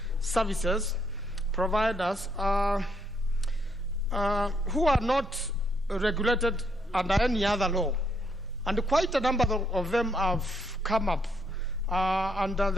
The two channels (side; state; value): both; normal; correlation 0.74